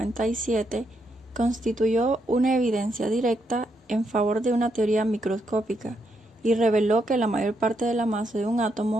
constituyó una evidencia directa en favor de una teoría microscópica y reveló que la mayor parte de la masa de un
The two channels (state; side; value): normal; both; correlation 0.79